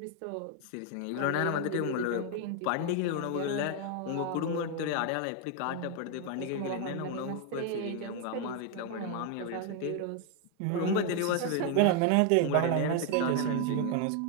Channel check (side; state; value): both; different; correlation 0.00